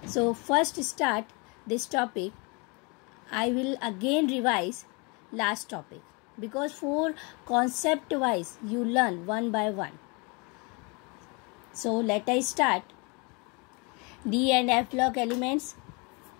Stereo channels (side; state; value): right; quieter; 30.6 dB